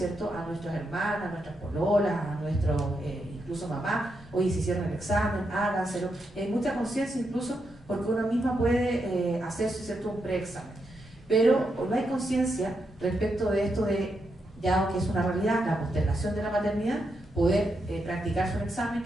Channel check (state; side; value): normal; both; correlation 0.83